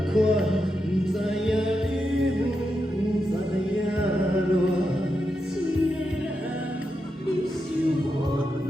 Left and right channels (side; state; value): both; normal; correlation 0.86